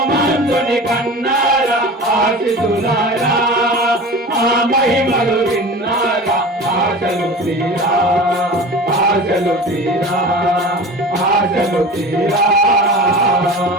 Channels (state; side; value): normal; both; correlation 0.35